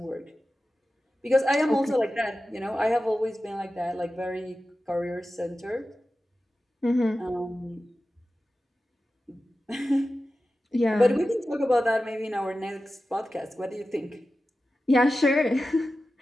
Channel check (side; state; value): both; normal; correlation 0.94